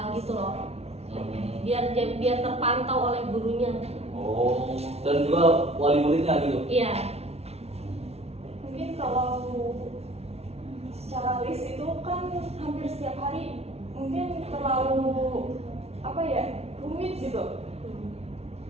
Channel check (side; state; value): left; late; 0.30 ms